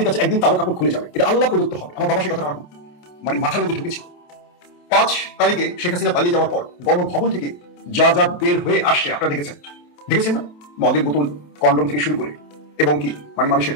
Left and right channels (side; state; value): right; late; 27 ms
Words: কাছে একদিন তারা কাপড় খুলে যাবে, এটা আল্লাহ প্রদত্ত হবে। আমার বাবা সে কথা মানে মাথার মধ্যে ঢুকেছে। 5 তারিখে শেখ হাসিনা পালিয়ে যাওয়ার পর গণভবন থেকে যা যা বের হয়ে আসছে আপনারা দেখেছেন না? মদের বোতল, কন্ডম থেকে শুরু করে এবং কি মানে মানুষের